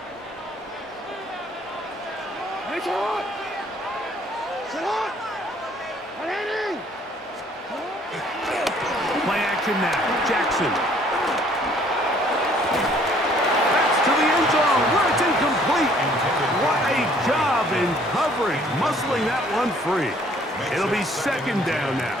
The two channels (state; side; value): normal; both; correlation 0.60